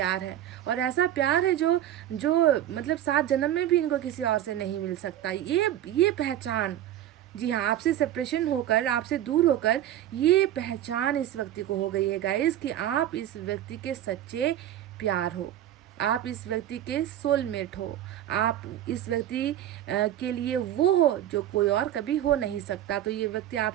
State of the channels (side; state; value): left; quieter; 11.9 dB